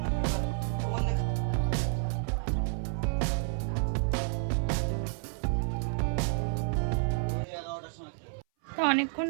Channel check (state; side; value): silent; left; 58 dB below the other